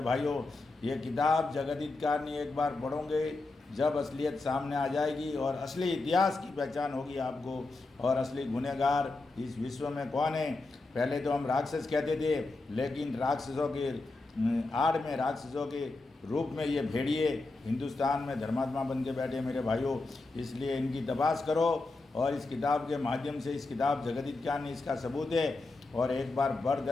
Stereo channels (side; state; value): right; quieter; 3.3 dB